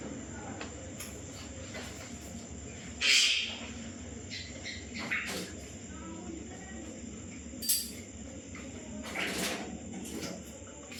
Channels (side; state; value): both; identical; correlation 1.00